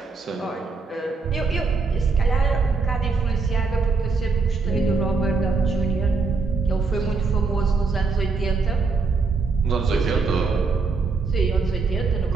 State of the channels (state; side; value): quieter; left; 4.5 dB